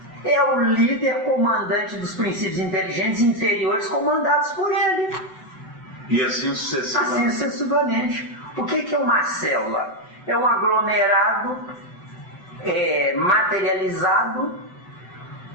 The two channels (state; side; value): late; right; 7.9 ms